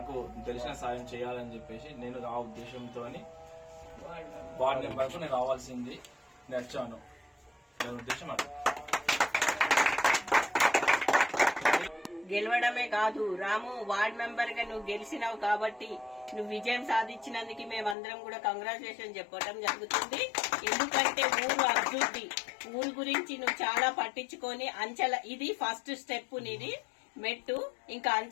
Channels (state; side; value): drops out; right; at 17.9 s